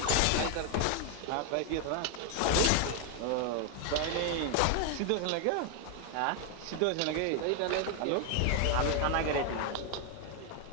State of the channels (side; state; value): both; different; correlation 0.01